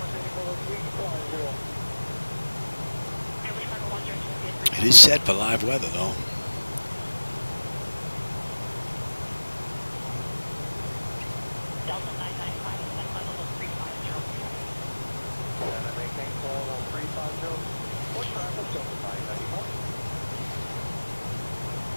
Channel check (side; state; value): both; inverted; correlation -1.00